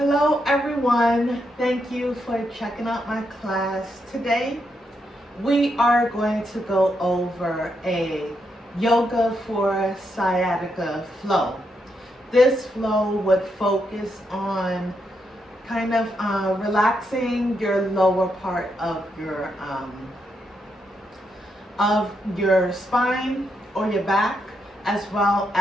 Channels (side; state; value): both; normal; correlation 0.81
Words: everyone, thank you for checking out my class. Today we are going to go over a yoga for sciatica flow. This flow would focus on kind of relaxing your lower part of your spine or your back, as well